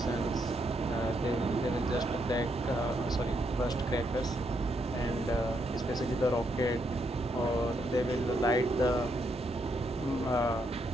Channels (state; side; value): normal; both; correlation 0.77